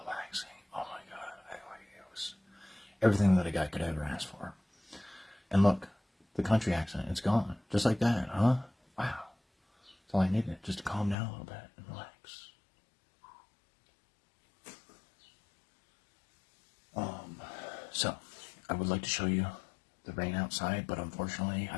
relaxing. Oh my God. It was everything that a guy could ever ask for. And look, the country accent, it's gone. Just like that, huh? Wow. That's all I needed, just to calm down a little bit and relax. So, I would like to show you the rain outside, but unfortunately,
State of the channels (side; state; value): right; drops out; at 11.2 s